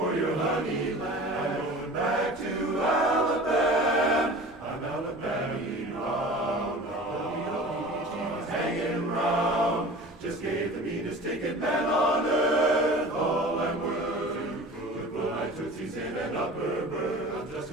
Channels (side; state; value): both; normal; correlation 0.39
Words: your honey lamb. Back to Alabama, I'm Alabama bound, hanging round. Just gave the meanest ticket man on earth. All I'm worth to put my tootsies in an upper berth. I'm just